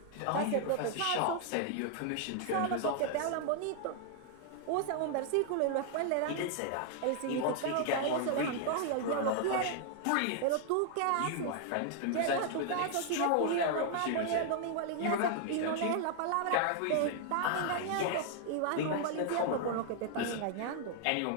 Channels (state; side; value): different; both; correlation 0.00